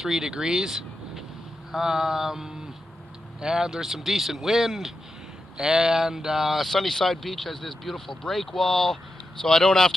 degrees. Um, and there's some decent wind. And Sunnyside Beach has this beautiful break wall, so I don't have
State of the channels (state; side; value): normal; both; correlation 0.88